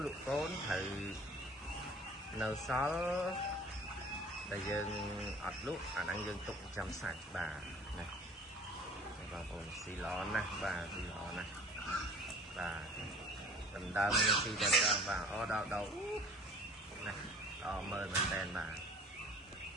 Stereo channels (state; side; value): normal; both; correlation 0.47